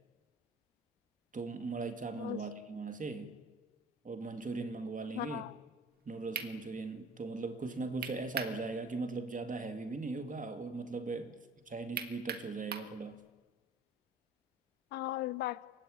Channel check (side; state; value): both; normal; correlation 0.46